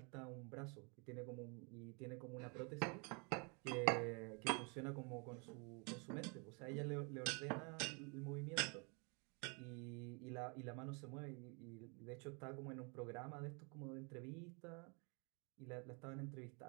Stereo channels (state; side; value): quieter; left; 33.9 dB